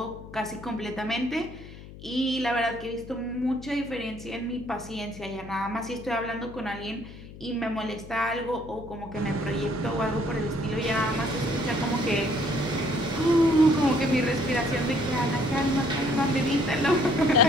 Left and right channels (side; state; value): left; noise; hum, 16 dB below the sound